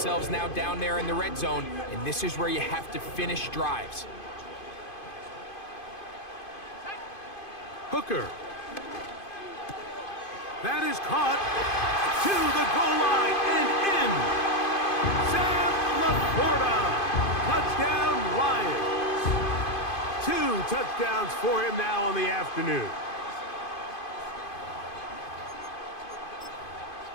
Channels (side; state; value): right; late; 2.5 ms